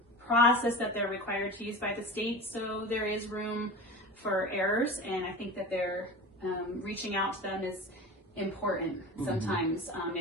process that they're required to use by the state, so there is room for errors. And I think that they're reaching out to them important sometimes.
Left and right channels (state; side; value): normal; both; correlation 0.32